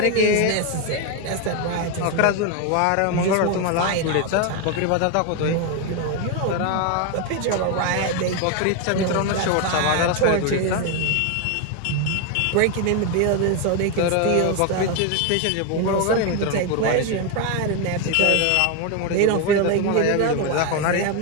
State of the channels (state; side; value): different; both; correlation 0.01